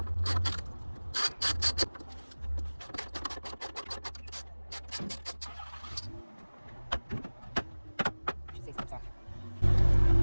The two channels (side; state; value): both; inverted; correlation -1.00